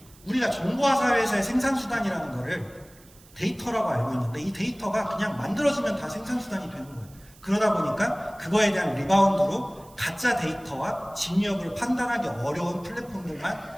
우리가 정보화 사회에서의 생산수단이라는 거를 데이터라고 알고 있는데 이 데이터가 그냥 만들어지면 다 생산수단이 되는 거예요. 그러다 보니까 그거에 대한 리바운드로 가짜 데이터와 진위 여부를 판단하기 어려운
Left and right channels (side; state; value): right; noise; hiss, 25 dB below the sound